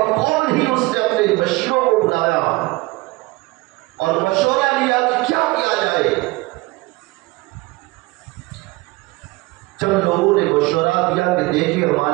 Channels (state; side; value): quieter; left; 22.5 dB